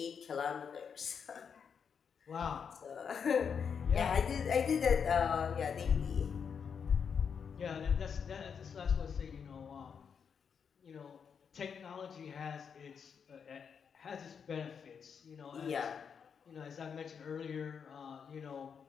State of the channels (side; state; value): right; quieter; 6.8 dB